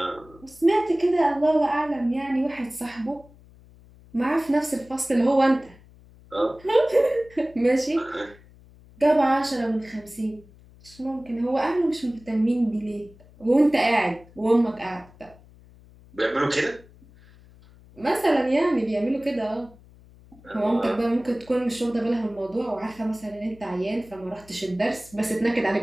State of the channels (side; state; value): left; noise; hum, 25 dB below the sound